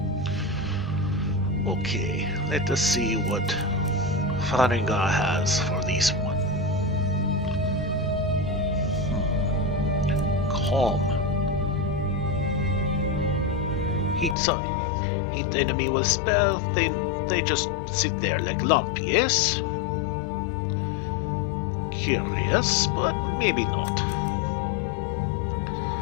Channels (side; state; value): right; drops out; at 14.4 s